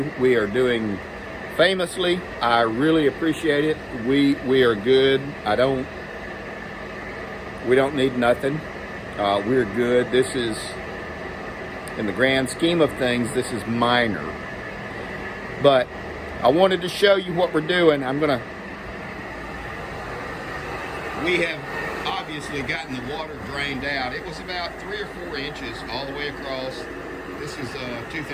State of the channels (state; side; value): identical; both; correlation 1.00